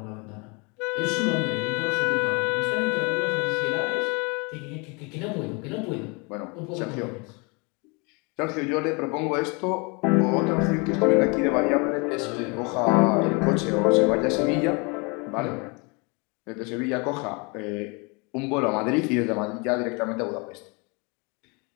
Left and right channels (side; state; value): right; quieter; 30.5 dB